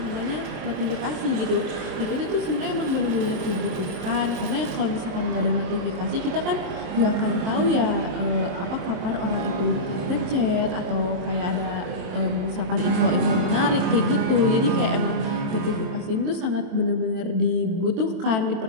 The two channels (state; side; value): late; left; 23 ms